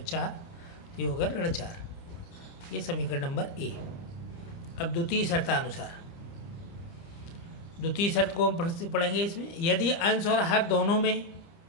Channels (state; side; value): late; right; 30 ms